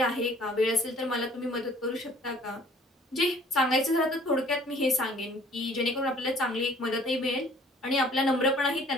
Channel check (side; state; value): both; normal; correlation 0.54